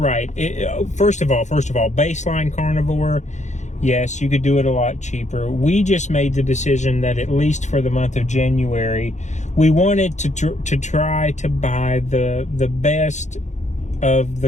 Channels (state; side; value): late; right; 0.34 ms